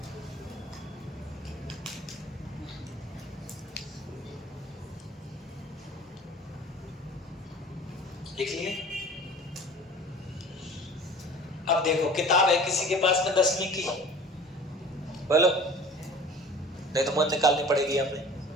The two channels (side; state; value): both; normal; correlation 0.43